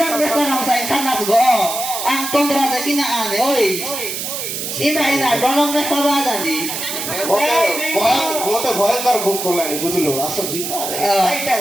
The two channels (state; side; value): noise; right; hiss, 5 dB below the sound